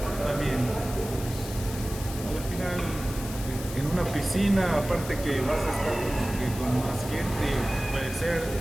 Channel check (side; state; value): left; noise; hiss, 12 dB below the sound